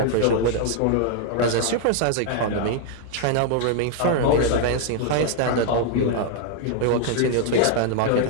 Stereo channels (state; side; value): different; both; correlation 0.00